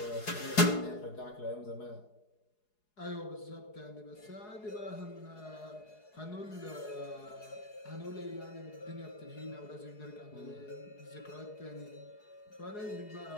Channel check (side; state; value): right; late; 4.8 ms